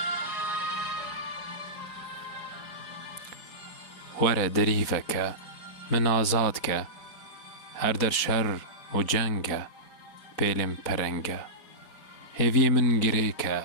وەرە دەریڤەکە من ئازادکە هەر دەر شەڕ و جەنگە پێلێم پەرەنگە هێڤیە من گرێکە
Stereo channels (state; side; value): late; right; 4.7 ms